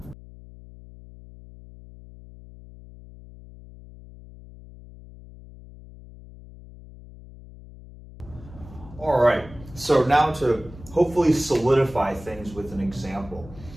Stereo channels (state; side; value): noise; left; hum, 18 dB below the sound